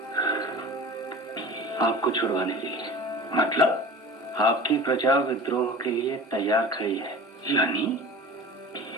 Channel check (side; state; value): both; normal; correlation 0.38